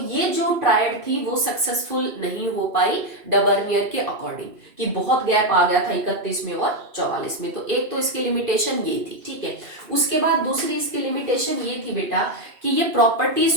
जो ट्रायड थी वो सक्सेसफुल नहीं हो पाई डबर्नियर के अकॉर्डिंग, कि बहुत गैप आ गया था 31 में और 44 में। तो एक तो इसकी लिमिटेशन ये थी, ठीक है। उसके बाद दूसरी इसकी लिमिटेशन ये थी बेटा कि ये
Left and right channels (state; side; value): late; left; 2.7 ms